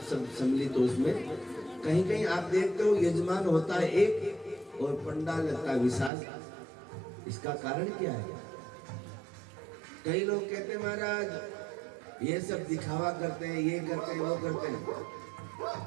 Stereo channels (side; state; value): left; drops out; at 6.1 s